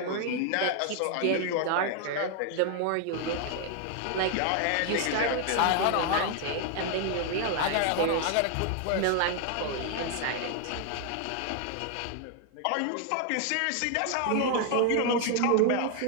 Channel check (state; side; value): different; both; correlation 0.00